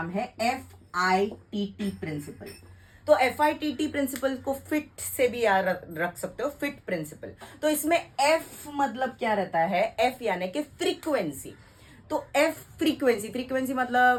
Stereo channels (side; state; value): both; identical; correlation 1.00